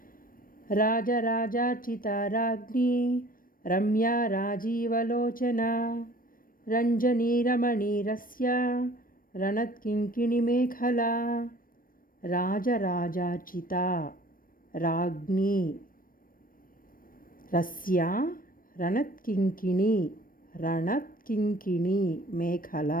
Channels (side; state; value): right; late; 0.41 ms